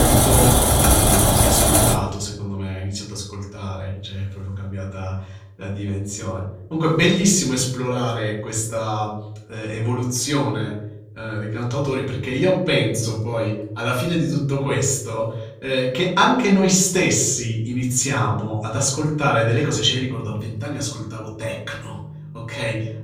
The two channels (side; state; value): both; identical; correlation 1.00